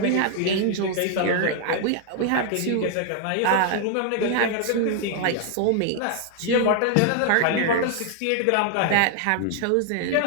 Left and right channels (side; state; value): both; different; correlation 0.00